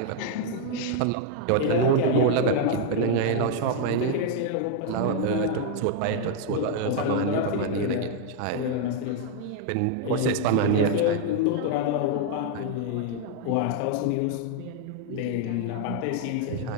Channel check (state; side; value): different; both; correlation 0.00